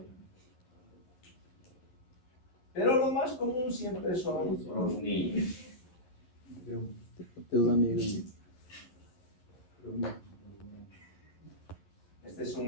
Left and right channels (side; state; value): right; late; 11 ms